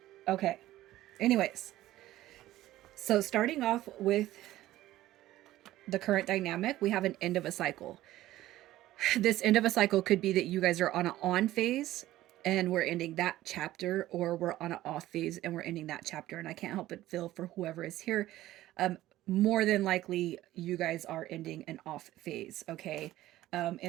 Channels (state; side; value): quieter; left; 15.1 dB